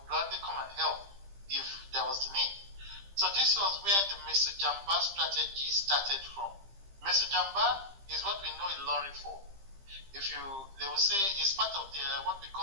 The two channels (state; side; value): late; left; 15 ms